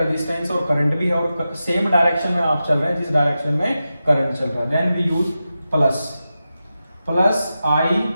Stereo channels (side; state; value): both; inverted; correlation -0.92